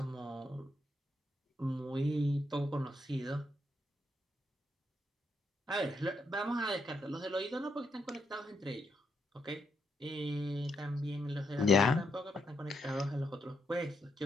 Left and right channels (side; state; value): both; normal; correlation 0.80